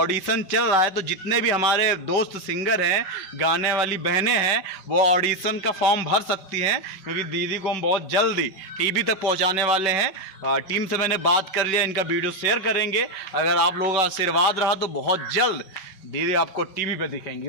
चल रहा है, तो जितने भी हमारे दोस्त सिंगर हैं, गाने वाली बहनें हैं, वो ऑडिशन का फॉर्म भर सकती हैं, क्योंकि दीदी को हम बहुत जल्दी टीवी तक पहुंचाने वाले हैं। टीम से मैंने बात कर लिया, इनका वीडियो शेयर करेंगे। अगर आप लोगों का आशीर्वाद रहा तो बहुत जल्द दीदी आपको टीवी पे दिखेंगी।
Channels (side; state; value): right; late; 5.2 ms